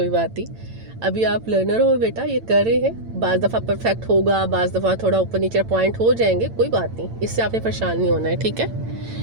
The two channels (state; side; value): late; left; 8.9 ms